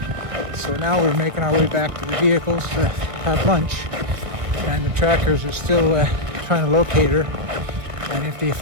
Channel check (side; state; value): left; late; 1.4 ms